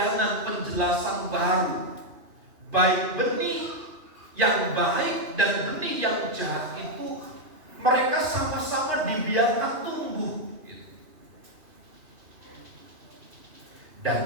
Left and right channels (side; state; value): left; late; 2.8 ms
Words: penjelasan baru, baik benih yang baik dan benih yang jahat itu mereka sama-sama dibiarkan tumbuh.